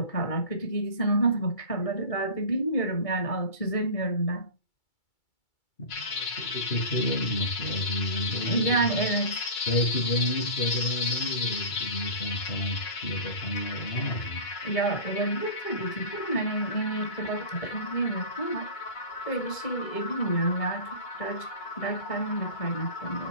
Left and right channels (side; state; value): right; late; 2.3 ms